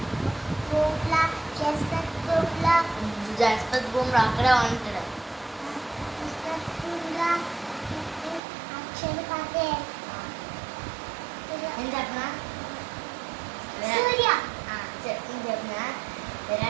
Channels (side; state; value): left; drops out; at 8.4 s